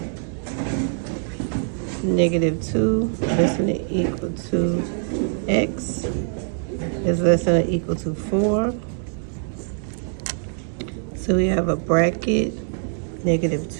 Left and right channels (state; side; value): silent; left; 63 dB below the other